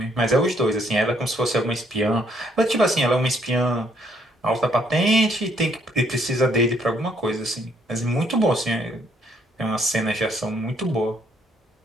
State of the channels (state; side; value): normal; both; correlation 0.68